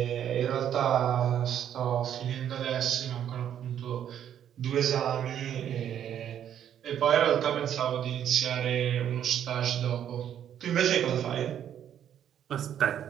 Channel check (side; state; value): left; quieter; 9.9 dB